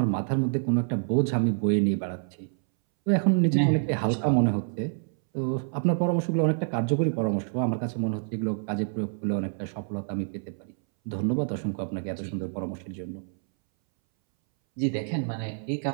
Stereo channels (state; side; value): silent; left; 60 dB below the other